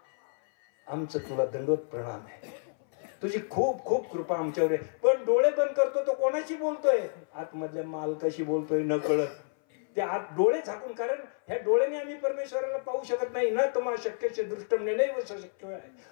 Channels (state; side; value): silent; right; 58 dB below the other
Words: आमचं तुला दंडवत प्रणाम आहे. तुझी खूप खूप कृपा आमच्यावर आहे. पण डोळे बंद करतो तो कोणाशी बोलतोय? आतमधल्या मालकाशी बोलतोय न कळत. ते आत डोळे झाकून. कारण ह्या डोळ्याने आम्ही परमेश्वराला पाहू शकत नाही ना. तुम्हा शक्यचे दृष्टम नैव शक्य आहे.